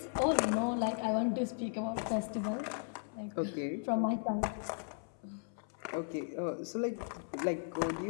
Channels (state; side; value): silent; right; 53 dB below the other